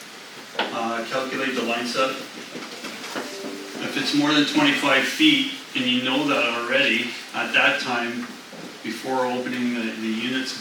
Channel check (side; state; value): both; identical; correlation 1.00